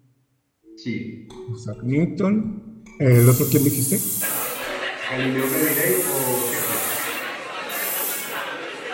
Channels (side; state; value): both; identical; correlation 1.00